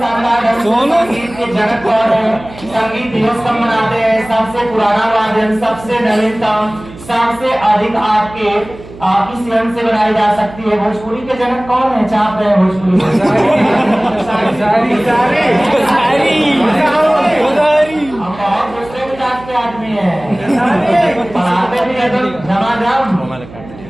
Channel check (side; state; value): right; noise; hum, 17 dB below the sound